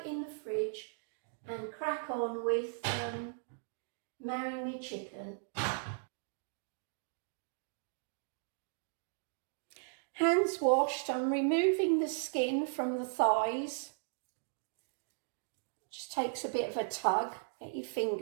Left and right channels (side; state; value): left; silent; digital silence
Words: in the fridge and crack on with marrying me chicken. Hands washed, I'm removing the skin from the thighs. Just takes a bit of a tug, get your